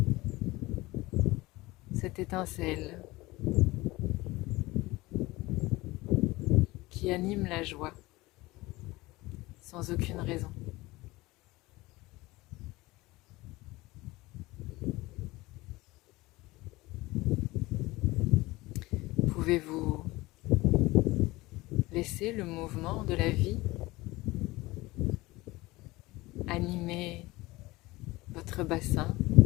cette étincelle qui anime la joie sans aucune raison. Pouvez-vous laisser le mouvement de la vie animer votre bassin,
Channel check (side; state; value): right; quieter; 20.4 dB